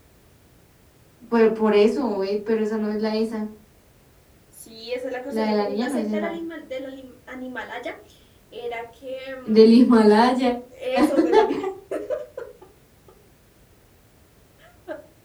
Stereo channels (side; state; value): both; identical; correlation 1.00